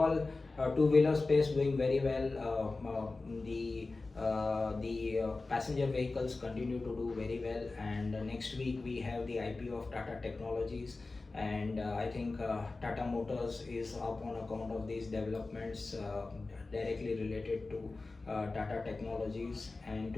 two-wheeler space doing very well. The passenger vehicles continue to do very well, and next week we have the IPO of Tata Technologies, and I think Tata Motors is up on account of these developments directly related to Tata Technologies. And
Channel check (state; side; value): quieter; right; 3.5 dB